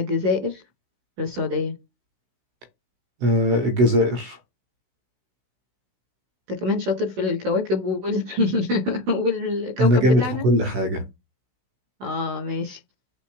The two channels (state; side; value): late; left; 16 ms